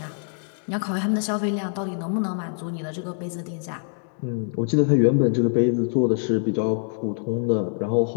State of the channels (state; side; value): silent; right; digital silence